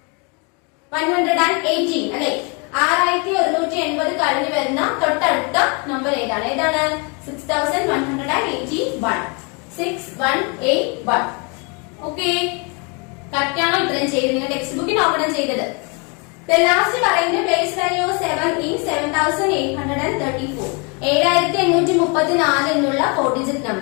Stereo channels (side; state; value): right; quieter; 32.3 dB